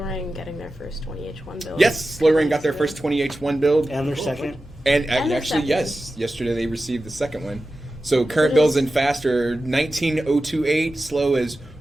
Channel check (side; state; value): both; normal; correlation 0.93